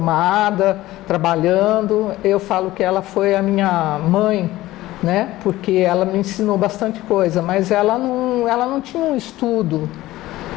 trabalhando. Eu falo que ela foi a minha mãe, né? Porque ela me ensinou bastante coisa, mas ela não tinha um estudo.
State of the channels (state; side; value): quieter; right; 16.6 dB